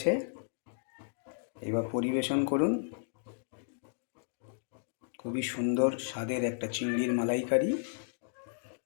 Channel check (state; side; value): silent; right; digital silence